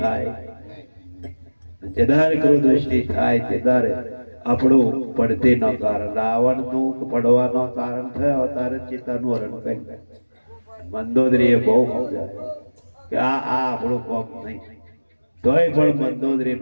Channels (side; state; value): both; inverted; correlation -1.00